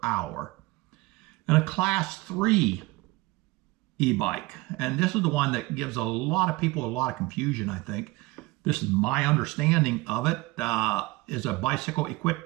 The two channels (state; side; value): quieter; left; 21.4 dB